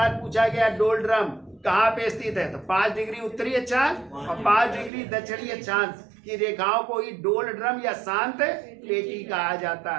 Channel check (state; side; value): drops out; left; at 4.9 s